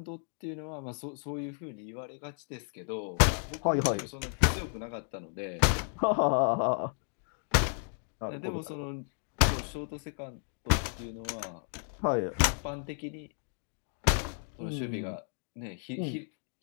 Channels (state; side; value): silent; right; 56 dB below the other